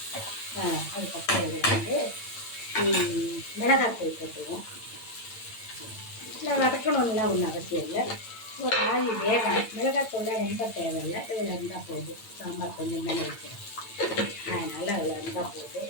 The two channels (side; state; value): right; late; 8.8 ms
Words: அதுக்கப்புறம் இதில் வந்து மிளகாத்தூள் போட்டுருவோம். இல்லை வதக்கணும்லாம் ஒன்றும் அவசியம் இல்லை, ஒரு ஆவி வேகணும். மிளகாத்தூள் ரொம்ப தேவையில்லை, இதில் இருந்தால் போதும். சாம்பார் கொஞ்சம் தானே வைக்கிறேன், அதனால் அதில் இருந்தால் போதும்.